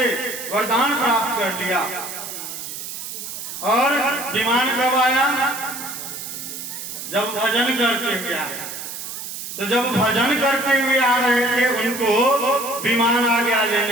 वरदान प्राप्त कर लिया, और विमान कब आया? जब भजन करते हुए आए। तो जब भजन करते हुए आ रहे थे, उनको विमान आ गया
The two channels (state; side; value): noise; right; hiss, 8 dB below the sound